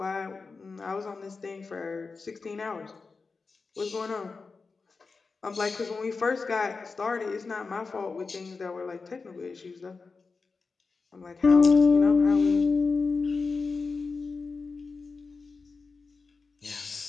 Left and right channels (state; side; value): quieter; right; 4.4 dB